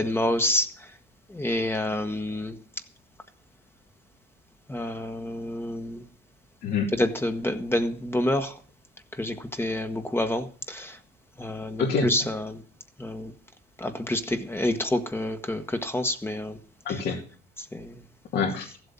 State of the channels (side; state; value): both; normal; correlation 0.55